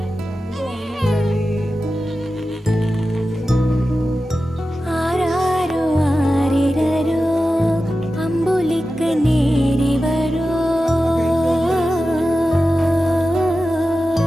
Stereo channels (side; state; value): both; normal; correlation 0.93